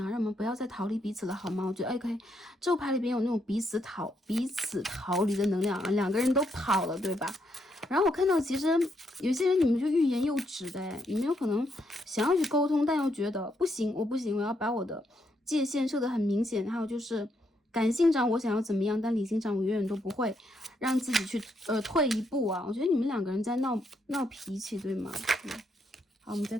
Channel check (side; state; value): both; normal; correlation 0.77